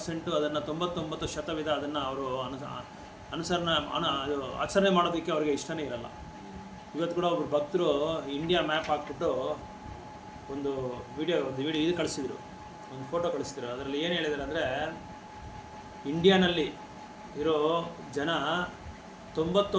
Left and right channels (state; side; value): identical; both; correlation 1.00